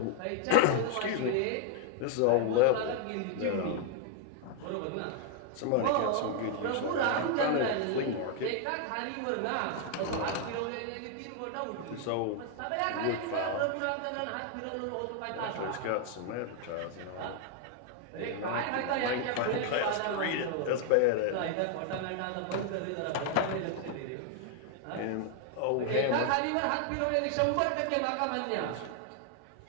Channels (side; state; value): both; different; correlation 0.00